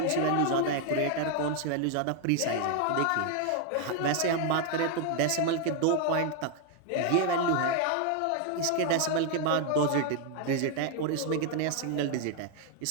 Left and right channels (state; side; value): different; both; correlation 0.00